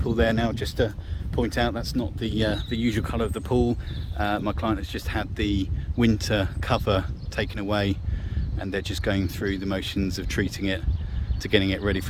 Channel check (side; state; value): both; identical; correlation 1.00